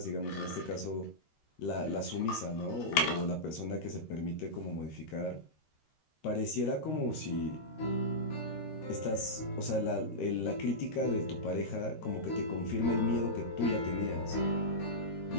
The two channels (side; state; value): right; late; 13 ms